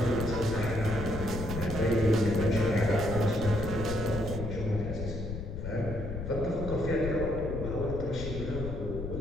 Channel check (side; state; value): left; noise; rumble, 6 dB below the sound